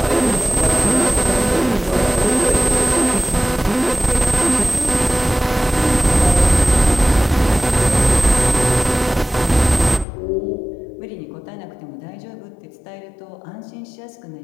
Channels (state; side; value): drops out; right; at 10.1 s